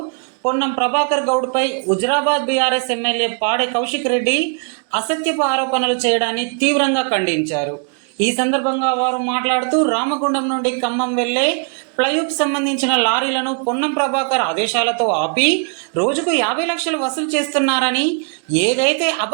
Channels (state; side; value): quieter; left; 39.2 dB